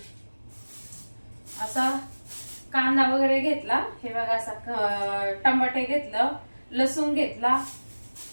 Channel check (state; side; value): inverted; both; correlation -1.00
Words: असा कांदा वगैरे घेतला. हे बघा असा टमाटे घेतलं, लसूण घेतला,